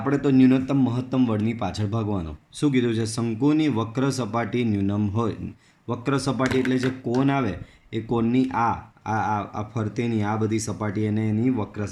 તો ન્યૂનતમ મહત્તમ વર્ડની પાછળ ભાગવાનો. શું કીધું છે? શંકુની વક્ર સપાટી ન્યૂનમ હોય. વક્ર સપાટી એટલે જે કોન આવે એ કોનની આ ફરતેની આ બધી સપાટી એને એની વક્ર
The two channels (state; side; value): identical; both; correlation 1.00